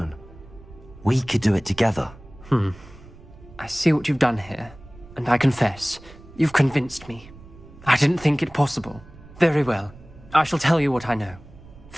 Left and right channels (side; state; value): right; noise; rumble, 20 dB below the sound